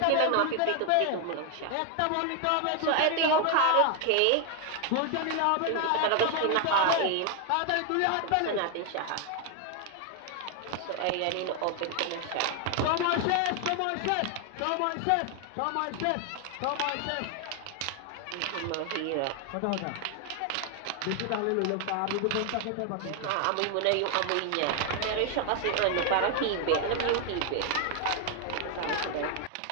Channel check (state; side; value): different; both; correlation 0.00